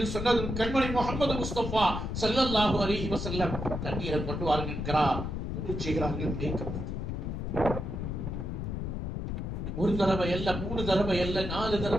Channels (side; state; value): left; noise; rumble, 4 dB below the sound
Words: சொன்னதும் கண்மணி முஹம்மது முஸ்தபா ஸல்லல்லாஹு அலைஹி வஸல்லம் தண்ணீரை கொண்டு வாருங்கள் என்கிறார். செய்கிறார்கள். ஒரு தடவை அல்ல, 3 தடவை அல்ல, 4